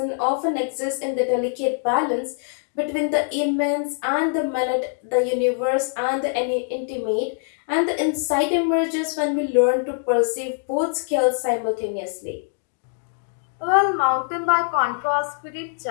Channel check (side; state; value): right; silent; 63 dB below the other